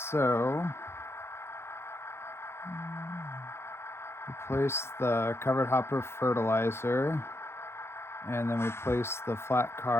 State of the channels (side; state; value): right; late; 0.12 ms